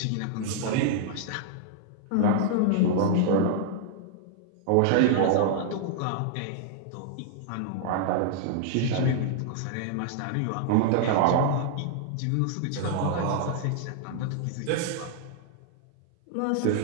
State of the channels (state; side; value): different; both; correlation -0.01